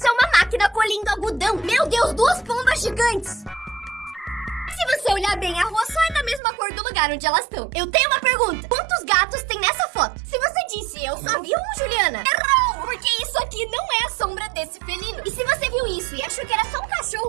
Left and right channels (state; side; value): drops out; left; at 6.4 s